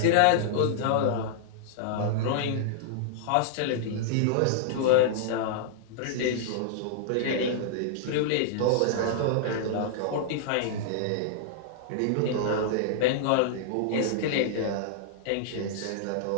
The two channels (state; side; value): different; both; correlation -0.01